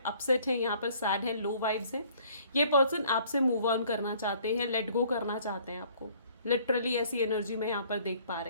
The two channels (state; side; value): inverted; both; correlation -0.58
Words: अपसेट हैं, यहाँ पर सैड हैं, लो वाइब्स हैं। ये पर्सन आपसे मूव ऑन करना चाहते हैं, लेट गो करना चाहते हैं आपको। लिटरली ऐसी एनर्जी मैं यहाँ पर देख पा